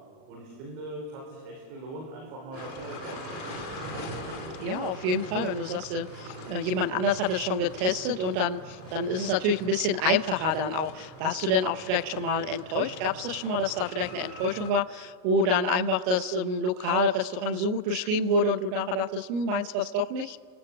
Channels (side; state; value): left; late; 38 ms